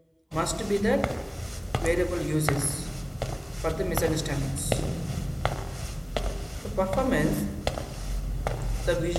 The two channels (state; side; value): identical; both; correlation 1.00